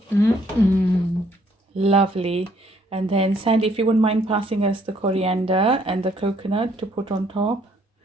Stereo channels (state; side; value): normal; both; correlation 0.66